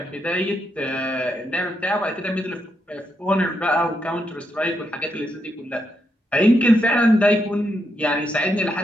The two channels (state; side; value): normal; both; correlation 0.81